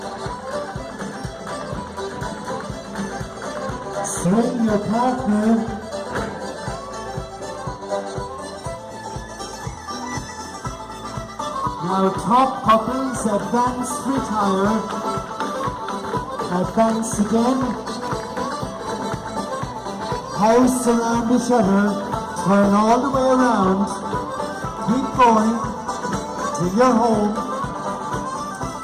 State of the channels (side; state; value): both; identical; correlation 1.00